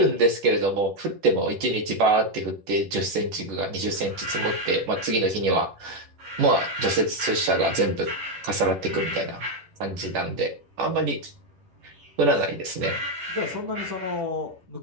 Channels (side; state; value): left; late; 10 ms